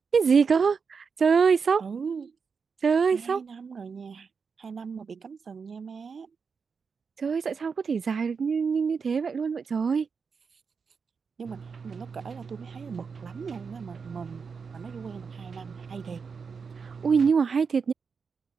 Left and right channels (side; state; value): left; quieter; 5.6 dB